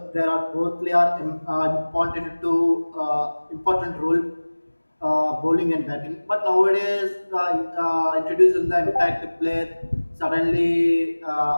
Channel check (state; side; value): inverted; both; correlation -1.00